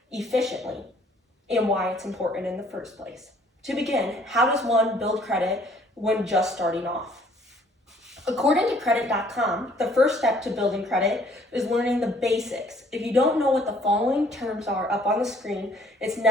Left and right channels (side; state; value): both; normal; correlation 0.60